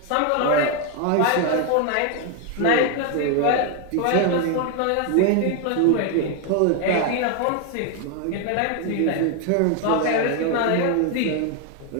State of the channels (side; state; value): both; different; correlation 0.01